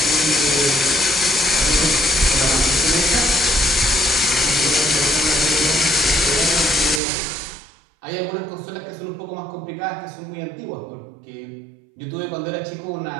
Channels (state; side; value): drops out; left; at 7.0 s